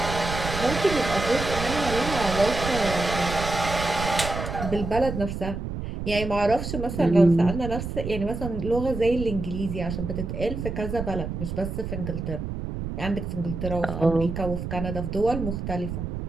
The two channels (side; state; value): right; noise; rumble, 5 dB below the sound